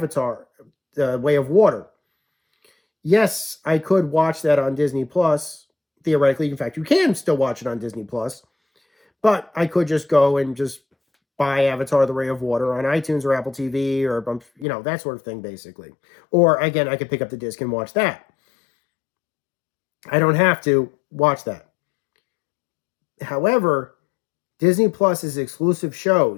The Way of Water, yes, I could watch that on Disney Plus. Theoretically, in fact, you can still watch it on Disney Plus. But I could just go and just buy Avatar: The Way of Water on iTunes or Apple TV or, that sort of thing, basically. Or, again, I could pick up the disc and watch that. I don't have to watch that. However, Disney Plus's exclusive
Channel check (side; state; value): right; drops out; at 14.7 s